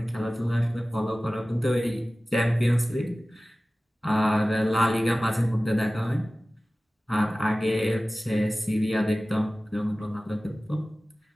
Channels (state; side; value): normal; both; correlation 0.97